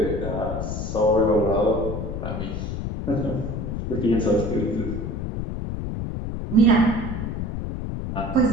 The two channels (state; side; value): noise; left; rumble, 4 dB below the sound